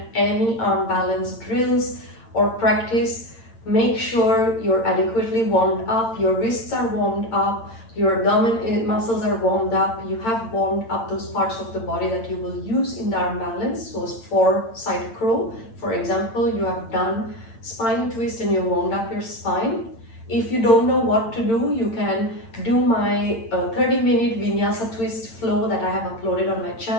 any arm balance drills or practice, make sure you're adequately warmed up, your wrists are warmed up, your abdomen muscles are warmed up, you have warmed up those parts of the body that you will use in the arm balance. So for side crow, for example, you have done spine twist and you warmed up your spine. If you don't know what to do, you can do my 30-minute vinyasa twist flow that I have uploaded on my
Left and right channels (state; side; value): late; right; 8.8 ms